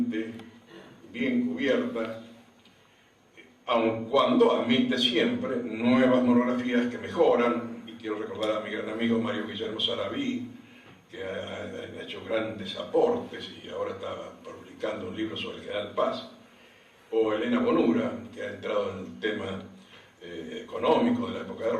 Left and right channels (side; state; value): both; identical; correlation 1.00